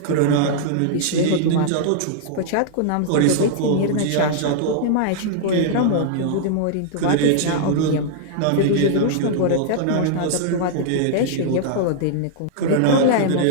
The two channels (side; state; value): both; different; correlation -0.01